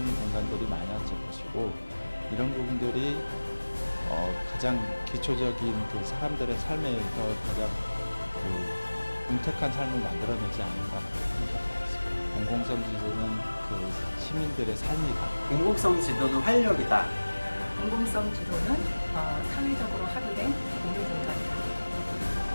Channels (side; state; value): both; inverted; correlation -1.00